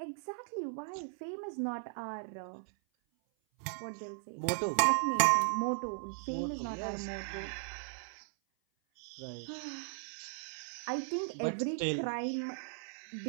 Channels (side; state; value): left; silent; 53 dB below the other